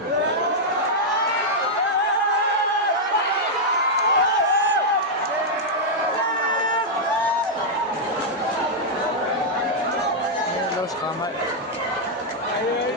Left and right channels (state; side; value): normal; both; correlation -0.04